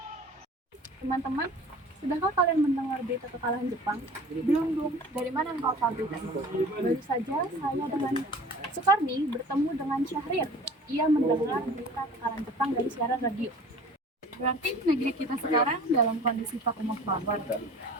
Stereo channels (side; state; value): both; normal; correlation 0.43